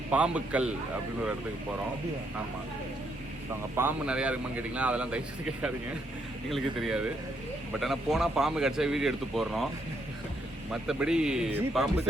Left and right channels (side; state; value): both; normal; correlation 0.75